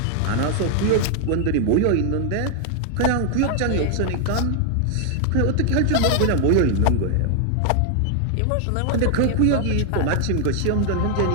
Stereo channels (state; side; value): different; both; correlation 0.00